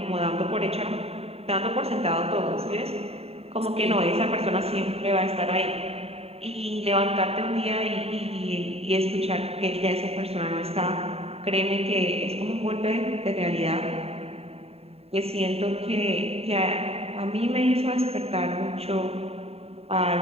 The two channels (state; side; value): late; left; 0.29 ms